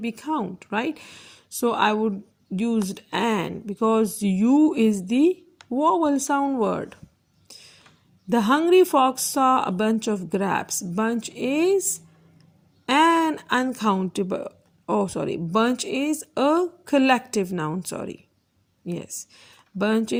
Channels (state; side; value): identical; both; correlation 1.00